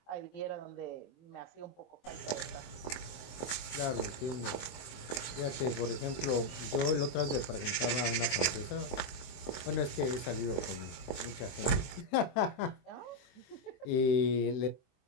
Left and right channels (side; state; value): right; late; 23 ms